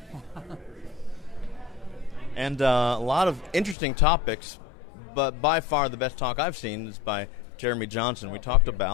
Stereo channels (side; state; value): right; drops out; at 3.8 s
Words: And a lot of interesting topics, but by far the best talk I've seen is by Jeremy Johnson. We talked